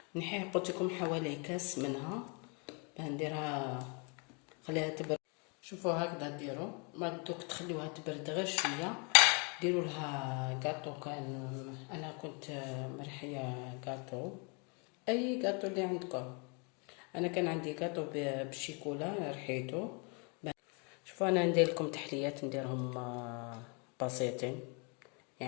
نحيه قلت لكم حوالي كاس منها باه نديرها، خليها تبرد. شوفوا هكذا ديروا، ما دوك تخليوها تبرد غير شويه. ديروا لها كاطو، كان انا كنت مرحيه كاطو، اي كاطو اللي عندكم. انا كان عندي كاطو بالشيكولا رحيته. شوفوا انا ندير لكم تحليات نديرهم بسيطين،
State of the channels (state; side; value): quieter; right; 34.2 dB